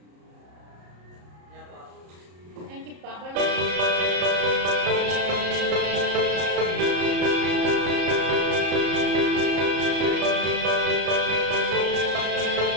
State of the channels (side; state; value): left; late; 34 ms